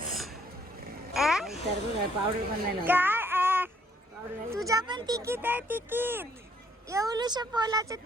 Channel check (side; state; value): both; normal; correlation 0.66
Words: पावडर पण नाही काय तुझ्या पण तिकीट आहे तिकीट. एवढूशा पोलाचं